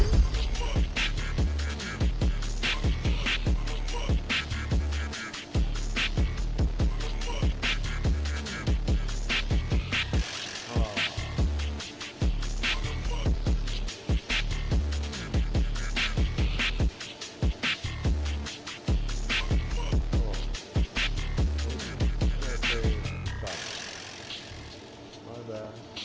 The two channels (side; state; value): both; identical; correlation 1.00